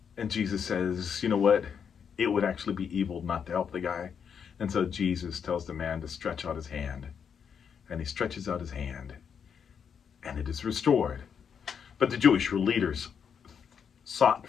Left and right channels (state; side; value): quieter; right; 7.2 dB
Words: And Jesus says, you know what? It would actually be evil not to help the guy. And so Jesus tells the man to stretch out his hand. And he stretches out his hand, and it is restored. But the Jewish leaders sought